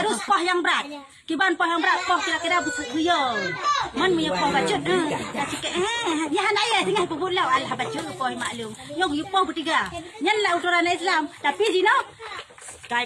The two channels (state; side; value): identical; both; correlation 1.00